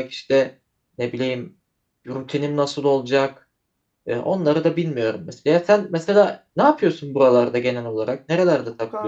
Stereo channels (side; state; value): both; identical; correlation 1.00